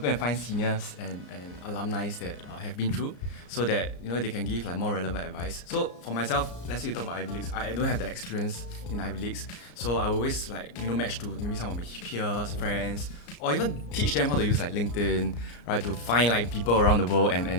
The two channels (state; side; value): late; right; 34 ms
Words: and find seniors and alumni that have been through, so that, you know, they can give like more relevant advice. So for myself, let's say you talk about Ivy Leagues, I don't have that experience in Ivy Leagues, so I always like, you know, match to maybe some of my peers, friends, or even teach them how to use like LinkedIn, right, to find like people around the world